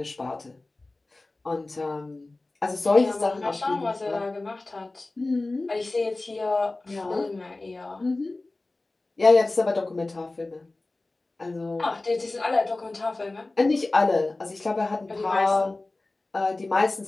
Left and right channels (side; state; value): right; quieter; 3.1 dB